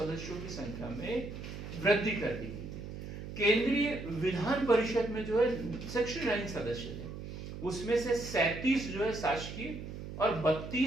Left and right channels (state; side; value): noise; right; hum, 9 dB below the sound